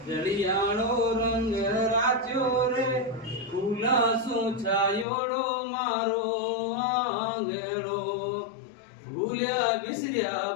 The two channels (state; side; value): drops out; right; at 5.1 s